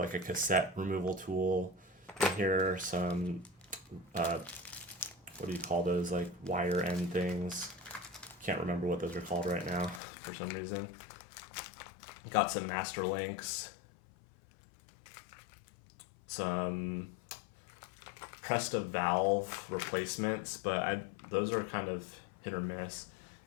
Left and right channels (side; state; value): right; drops out; at 10.0 s